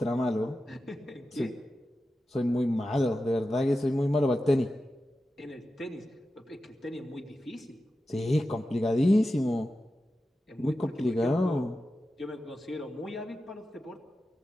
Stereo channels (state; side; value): normal; both; correlation 0.92